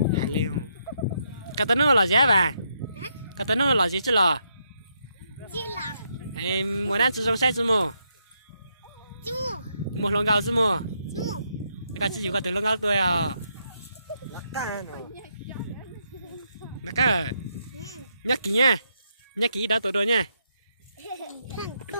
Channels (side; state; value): both; inverted; correlation -0.78